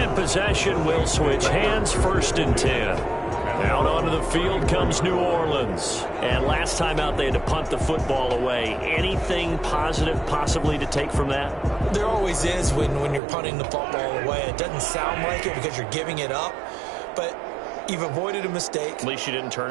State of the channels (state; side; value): drops out; left; at 13.2 s